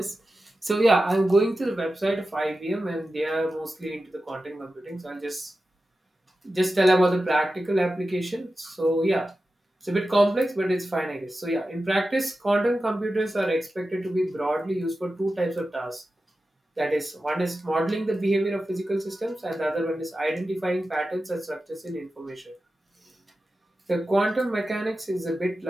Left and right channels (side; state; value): both; normal; correlation 0.93